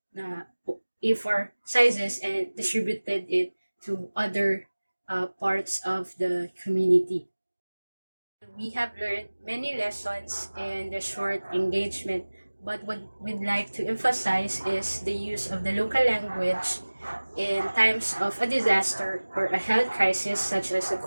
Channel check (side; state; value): both; inverted; correlation -1.00